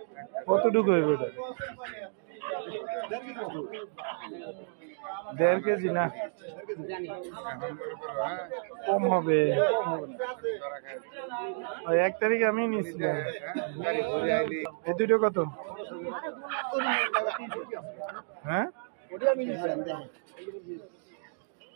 কতটুকু হইবে এটা? 1.5 কেজি না, কম হবে। 1 তারিখে আমি নিয়েছিলাম। এই দুটো কত? হ্যাঁ,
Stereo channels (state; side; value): silent; left; digital silence